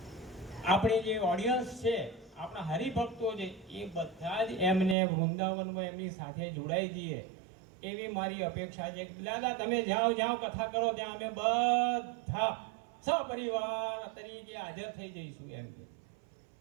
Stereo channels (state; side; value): drops out; left; at 5.0 s